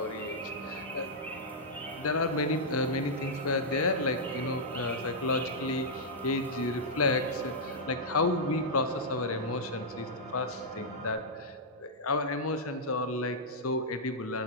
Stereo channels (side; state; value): both; normal; correlation -0.08